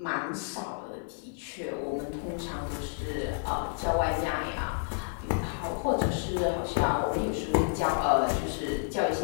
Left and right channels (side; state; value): right; silent; digital silence